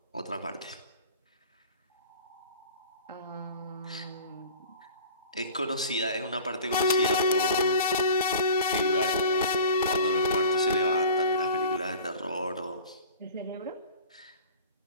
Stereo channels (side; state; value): both; inverted; correlation -0.42